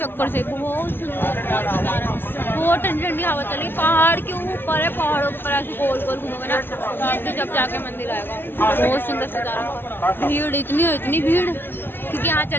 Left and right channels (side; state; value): right; late; 0.099 ms